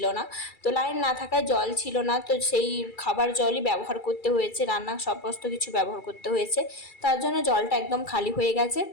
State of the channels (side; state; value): right; late; 2.3 ms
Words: না, তো লাইন না থাকায় জল ছিল না, তো সেই খাবার জলই ব্যবহার করতে হয়েছে, রান্না সমস্ত কিছু ব্যবহার করতে হয়েছে। তার জন্য জলটা একদম খালি হয়ে গেছে।